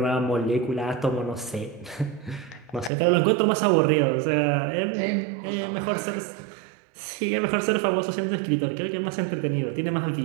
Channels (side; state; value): left; drops out; at 2.9 s